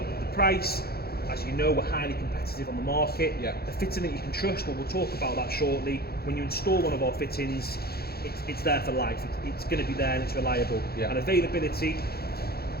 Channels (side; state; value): right; late; 0.45 ms